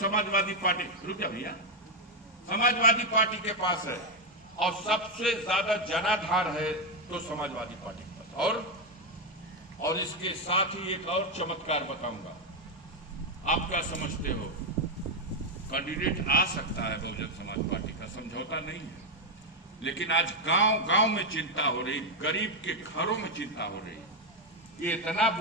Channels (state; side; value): normal; both; correlation 0.04